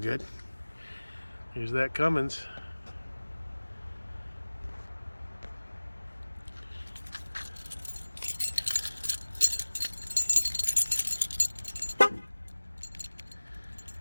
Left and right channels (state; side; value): inverted; both; correlation -1.00